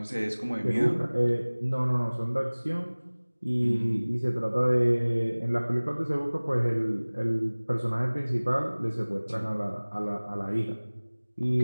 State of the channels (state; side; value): inverted; both; correlation -1.00